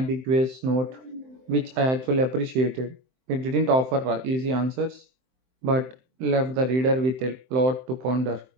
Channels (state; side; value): late; left; 23 ms